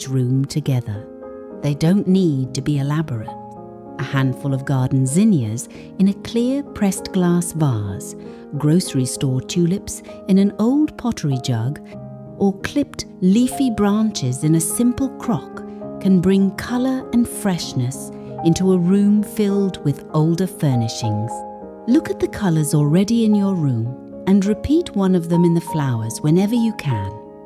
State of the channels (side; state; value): both; identical; correlation 1.00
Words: room together. They don't need to be elaborate. A handful of garden zinnias in a clear pressed glass vase, grocery store tulips in an old pottery jug, or clipped leafy branches in a simple crock can bring colour and freshness into a room filled with older furnishings. Look at the colours already in your room and repeat one of them in the flowers whenever you can.